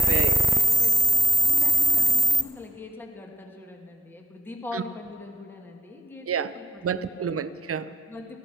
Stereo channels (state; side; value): normal; both; correlation 0.85